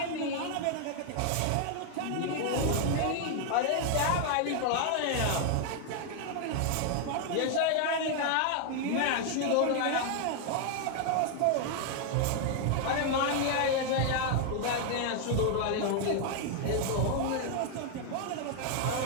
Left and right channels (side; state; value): both; different; correlation 0.00